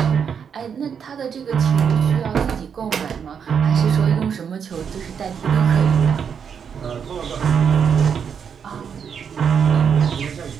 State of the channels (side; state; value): left; quieter; 7.2 dB